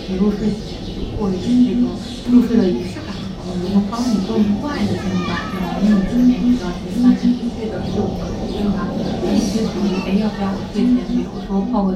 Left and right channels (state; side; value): identical; both; correlation 1.00